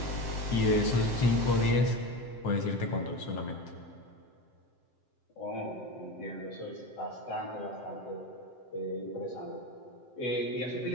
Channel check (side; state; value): right; late; 7.7 ms